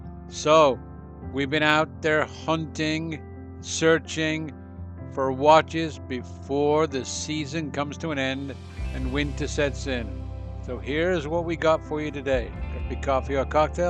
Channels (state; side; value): identical; both; correlation 1.00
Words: So, we've been out there hunting, searching for watches before the season comes to an end and winter sets in. So here's what we got for you today. Could be coffee or